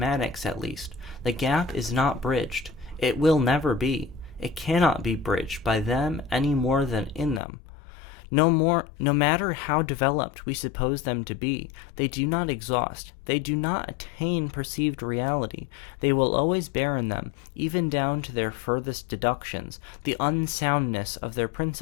at least, the gap is not bridged. It will never be. It cannot be bridged by them any more than in them. No matter how developed we suppose them to be, they do not exhaust, they do not attain perceived reality. They will always bear in them, even down to their furthest deductions, the unsoundness of their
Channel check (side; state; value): right; drops out; at 7.4 s